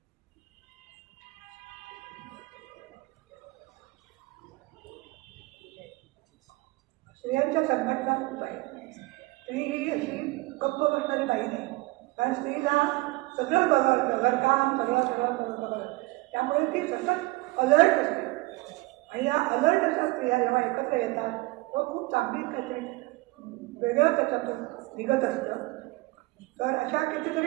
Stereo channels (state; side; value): quieter; left; 22.0 dB